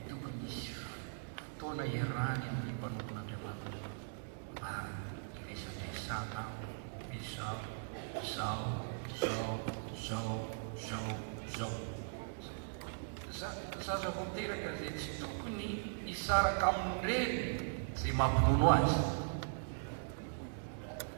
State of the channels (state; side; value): silent; left; digital silence